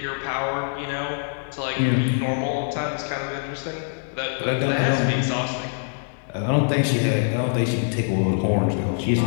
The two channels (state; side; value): silent; right; digital silence